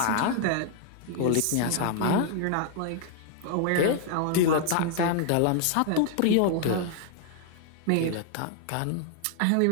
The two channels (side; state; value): both; different; correlation 0.00